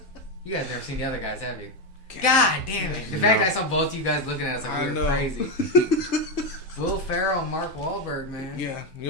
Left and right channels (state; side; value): normal; both; correlation 0.08